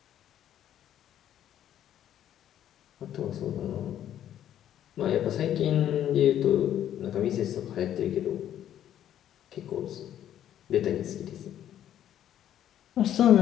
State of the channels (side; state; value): right; quieter; 11.0 dB